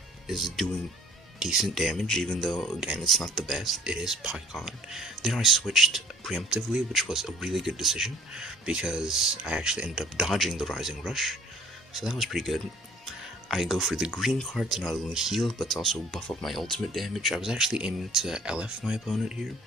is doing decent damage, even though, again, it's not the best. It is Pycon. Then I switched preemptively, which was a really good decision, because I actually ended up dodging the Rising Rush, so that was pretty good. I go for the green card to not only heal, but to also buff up my ultimate damage. I was actually aiming to LF my opponent here,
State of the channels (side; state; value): both; normal; correlation 0.54